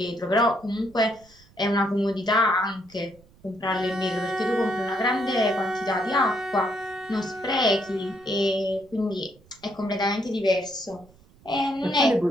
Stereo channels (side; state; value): right; noise; rumble, 27 dB below the sound